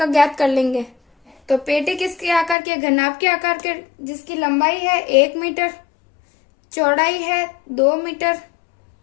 ज्ञात कर लेंगे। तो पेटी किसके आकार के, घनाभ के आकार के, जिसकी लंबाई है 1 मीटर, चौड़ाई है 2 मीटर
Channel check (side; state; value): right; drops out; at 2.6 s